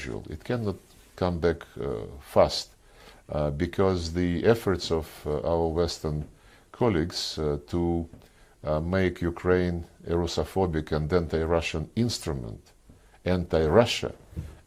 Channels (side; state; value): both; identical; correlation 1.00